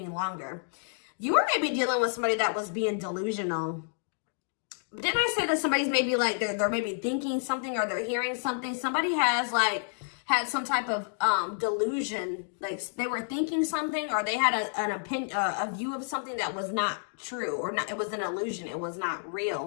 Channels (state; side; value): silent; right; digital silence